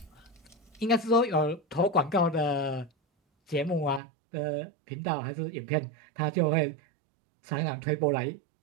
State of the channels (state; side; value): drops out; left; at 4.0 s